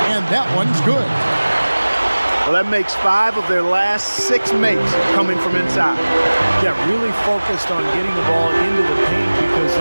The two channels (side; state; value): both; inverted; correlation -1.00